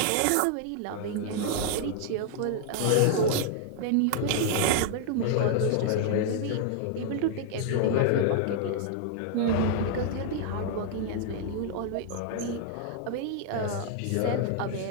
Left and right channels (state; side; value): different; both; correlation 0.00